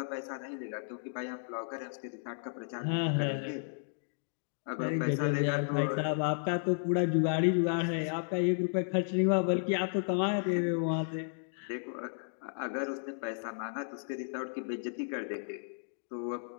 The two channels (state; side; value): silent; right; digital silence